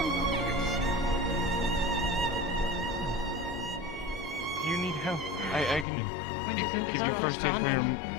Do you need help? I can give you first aid for your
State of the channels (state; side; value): drops out; right; at 5.9 s